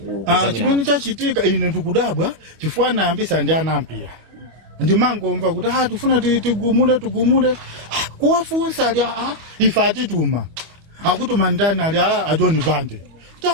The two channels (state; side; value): late; left; 25 ms